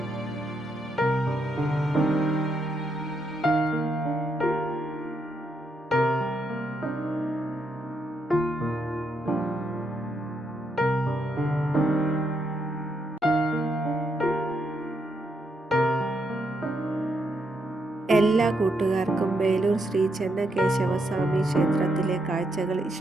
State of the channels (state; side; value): normal; both; correlation 0.79